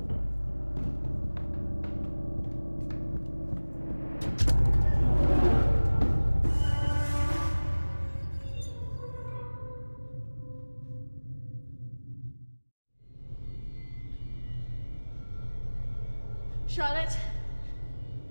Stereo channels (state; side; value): inverted; both; correlation -1.00